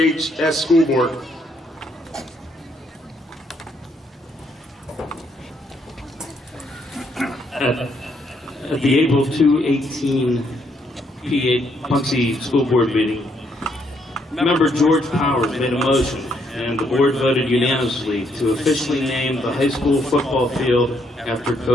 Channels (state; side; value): normal; both; correlation 0.73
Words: School Board. At the April 2018 Punxsutawney School Board meeting, member George Powers made a motion, and the board voted unanimously to officially name the high school football field after